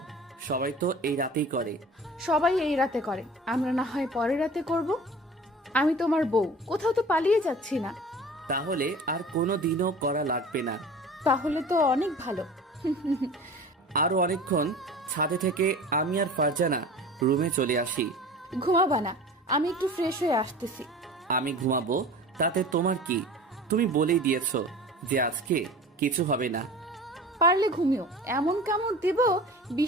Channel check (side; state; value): both; normal; correlation 0.40